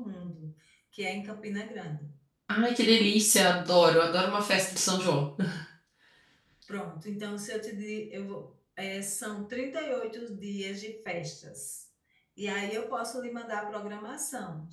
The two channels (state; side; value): identical; both; correlation 1.00